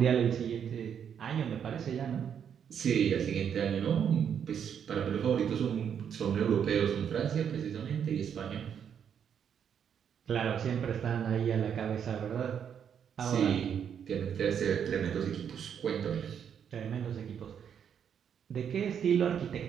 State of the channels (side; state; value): left; quieter; 8.1 dB